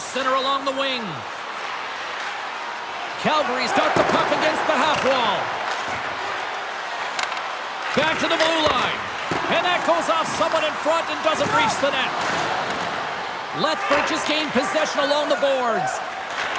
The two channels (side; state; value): both; identical; correlation 1.00